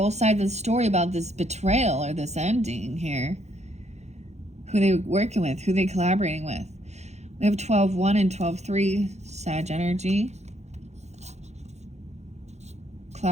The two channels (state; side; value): late; left; 0.32 ms